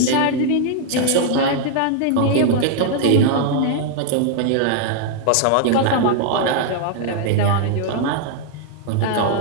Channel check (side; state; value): both; different; correlation 0.00